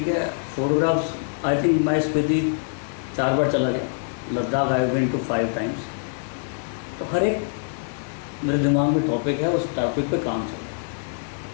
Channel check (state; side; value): silent; right; digital silence